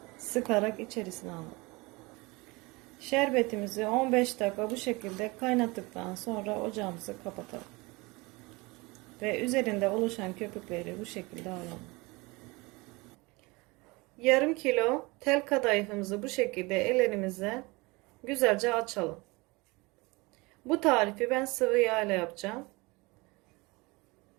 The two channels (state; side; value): quieter; left; 24.6 dB